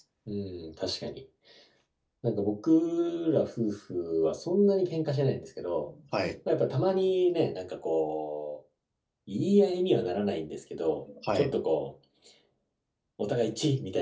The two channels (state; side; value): identical; both; correlation 1.00